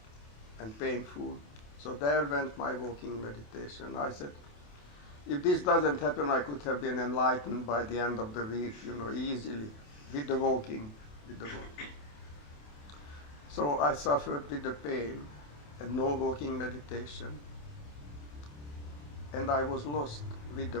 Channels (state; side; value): late; right; 28 ms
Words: and painful. So there went my walking meditation. I said, if this doesn't happen, I could have been enlightened by the end of the week, easily, with the walking. So I suffered with the pain and no walking meditation. And I was lost with the